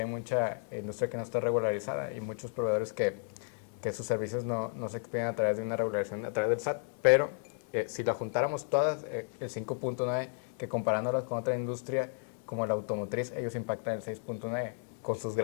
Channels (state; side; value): silent; right; 56 dB below the other